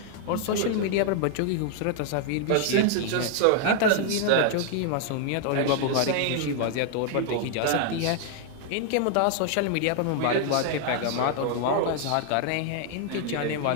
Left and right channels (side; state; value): both; different; correlation 0.00